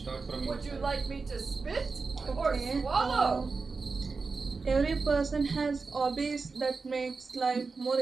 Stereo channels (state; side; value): quieter; left; 4.4 dB